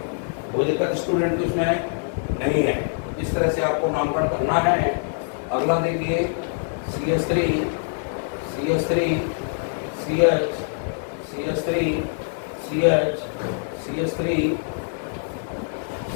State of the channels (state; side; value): silent; right; digital silence